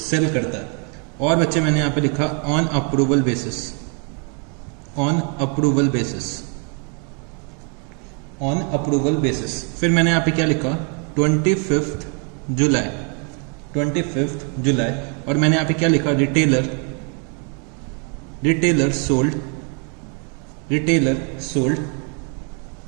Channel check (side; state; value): left; quieter; 38.2 dB